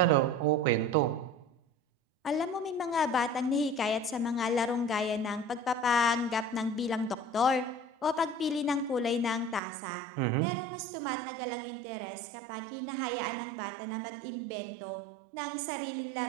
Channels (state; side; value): drops out; left; at 9.6 s